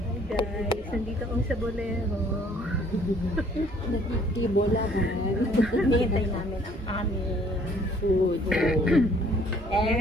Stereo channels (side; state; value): both; normal; correlation 0.59